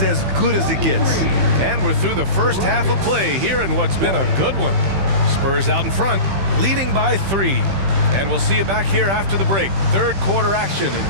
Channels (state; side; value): late; left; 15 ms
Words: as good as it gets. And we're through the first half of play here in what's been a good one. Spurs out in front, leading by 3. And we'll see you back here after the break. Third quarter action